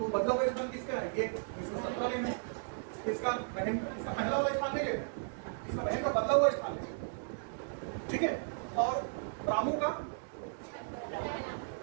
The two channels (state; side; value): silent; left; digital silence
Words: बदला हुआ स्थान किसका है? ये 17 लेना है। इसका बहन, इसका पहला वाला स्थान नहीं लेना, इसका बहन का बदला हुआ स्थान है, ठीक है? और रामू का